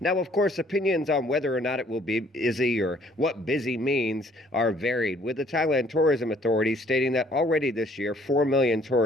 of course, opinions on whether or not it will be busy or what busy means are varied, with the Thailand Tourism Authority stating that already this year 4 million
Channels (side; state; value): both; normal; correlation 0.61